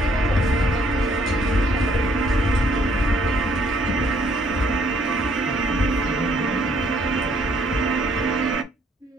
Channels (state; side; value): normal; both; correlation 0.65